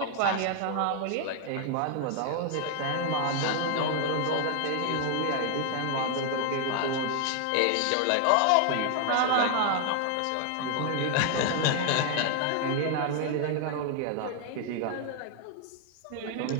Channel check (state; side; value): different; both; correlation 0.00